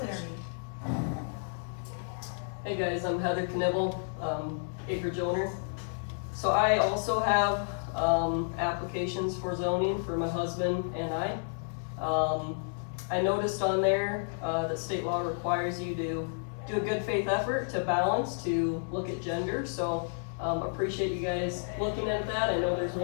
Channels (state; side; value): silent; right; digital silence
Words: me. Hey guys, I'm Heather Knibble, acreage owner. So I also have applications for zoning for my husband and I. I noticed on there that state law requires you to do a good faith effort to balance, to look at gender. So appreciate you guys looking at that. I know there's